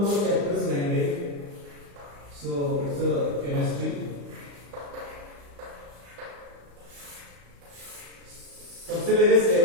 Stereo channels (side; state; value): left; late; 35 ms